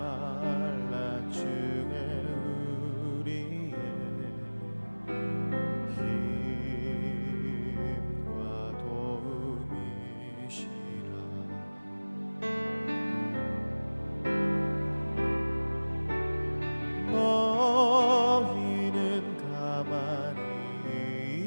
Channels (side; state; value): both; inverted; correlation -1.00